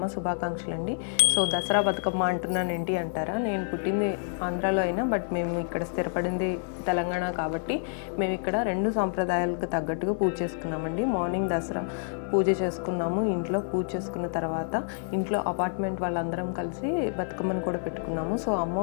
శుభాకాంక్షలు అండి. సో దసరా బతుకమ్మ అంటున్నాను ఏంటి అంటారా, నేను పుట్టింది ఆంధ్రాలో అయినా బట్ మేము ఇక్కడ స్థిరపడింది తెలంగాణ కాబట్టి మేము ఇక్కడ రెండు సాంప్రదాయాలకు తగ్గట్టుగా పూజ చేసుకున్నామండి. మార్నింగ్ దసరా పూజ చేసుకున్నాము, ఇంట్లో పూజ చేసుకున్న తర్వాత ఇంట్లో అపార్ట్మెంట్ వాళ్ళందరం కలిసి బతుకమ్మను కూడా పెట్టుకున్నాము. సో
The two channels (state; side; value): silent; right; 59 dB below the other